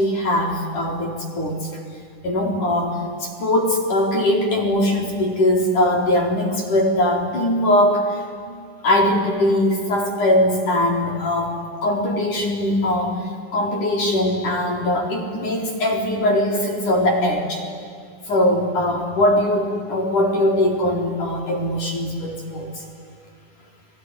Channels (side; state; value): right; late; 10 ms